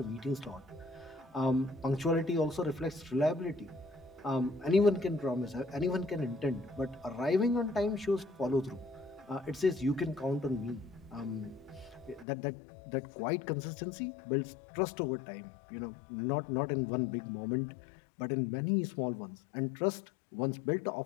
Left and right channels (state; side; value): drops out; right; at 12.2 s